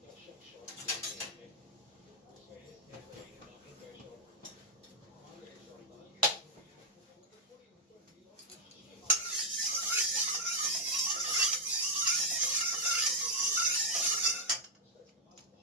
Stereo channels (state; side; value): normal; both; correlation -0.03